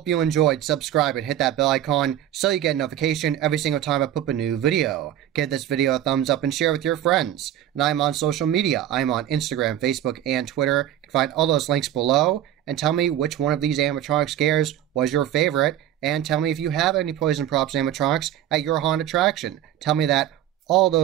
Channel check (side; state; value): left; quieter; 11.6 dB